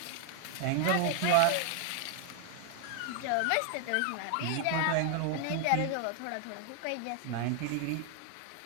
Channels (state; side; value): different; both; correlation 0.00